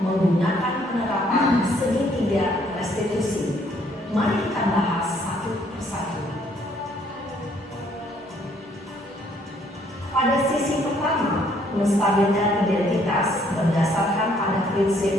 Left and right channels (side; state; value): both; normal; correlation 0.65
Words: menggunakan penerapan segitiga restitusi. Mari kita bahas satu persatu. Pada sisi pertama, menstabilkan identitas berdasarkan pada